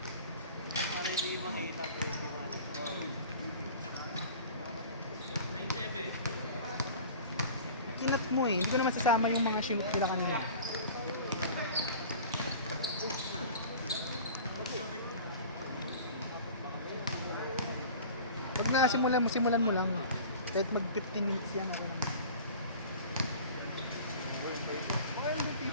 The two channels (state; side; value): inverted; both; correlation -0.41